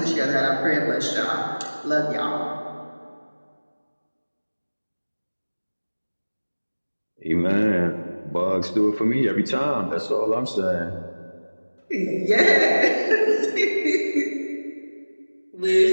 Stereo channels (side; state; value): both; inverted; correlation -1.00